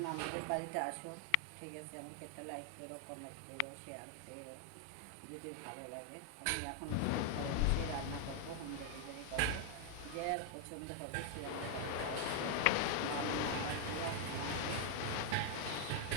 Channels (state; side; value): different; both; correlation 0.00